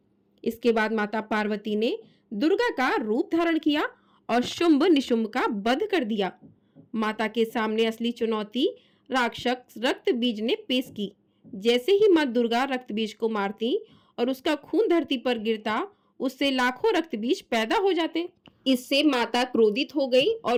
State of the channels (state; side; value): identical; both; correlation 1.00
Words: इसके बाद माता पार्वती ने दुर्गा का रूप धारण किया और शुंभ निशुंभ का वध कर दिया। माता के सामने असली चुनौती राक्षस रक्तबीज ने पेश की। जैसे ही मां दुर्गा रक्तबीज को मारती और उसका खून धरती पर गिरता, उससे लाखों रक्तबीज पैदा हो जाते। इससे माता क्रोधित हो गई और